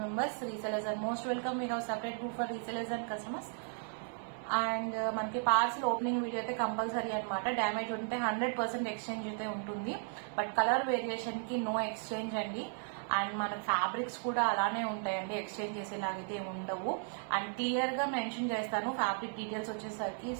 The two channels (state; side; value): silent; left; 54 dB below the other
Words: members. Resellers are most welcome. We have separate group for resellers and customers. And మనకి parcel opening video అయితే compulsory అనమాట. Damage ఉంటే 100% exchange అయితే ఉంటుంది, but colour variation కి no exchange అండి. And మన fabrics కూడా అలానే ఉంటాయండి, ఎక్స్చేంజ్ చేసేలాగైతే ఉండవు. అండ్ క్లియర్ గా మెన్షన్ చేస్తాను ఫ్యాబ్రిక్ డీటెయిల్స్ వచ్చేసరికి.